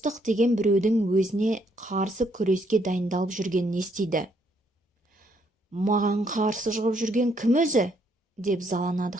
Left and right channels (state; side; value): normal; both; correlation 0.71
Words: деген біреудің өзіне қарсы күреске дайындалып жүргенін естиді. «Маған қарсы шығып жүрген кім өзі?» деп заланады